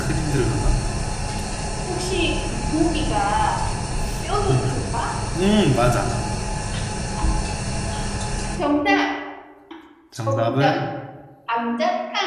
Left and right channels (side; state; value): both; identical; correlation 1.00